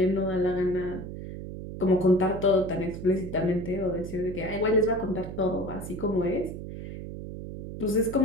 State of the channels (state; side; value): noise; right; hum, 9 dB below the sound